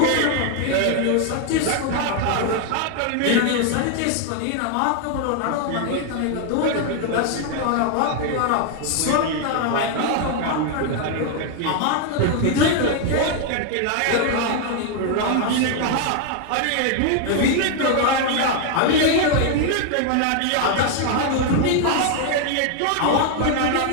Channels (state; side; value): different; both; correlation 0.00